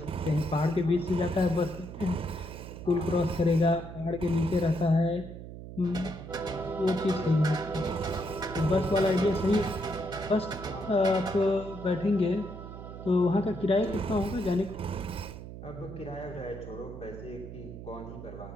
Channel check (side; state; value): right; noise; hum, 12 dB below the sound